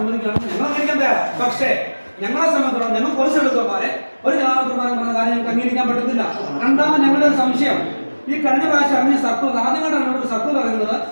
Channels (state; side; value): inverted; both; correlation -1.00